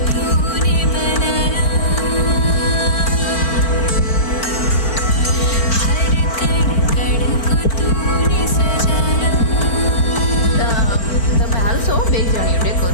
તમે હાલશો બે જણી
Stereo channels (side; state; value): right; late; 4.4 ms